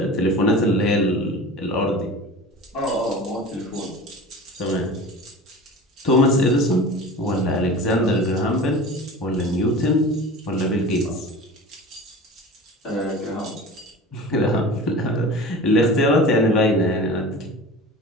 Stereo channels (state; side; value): normal; both; correlation 0.36